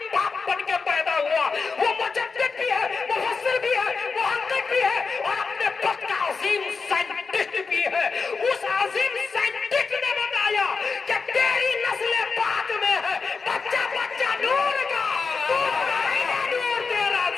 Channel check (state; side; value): quieter; right; 4.8 dB